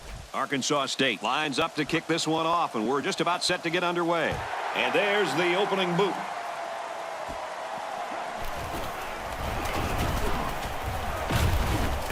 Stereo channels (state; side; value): identical; both; correlation 1.00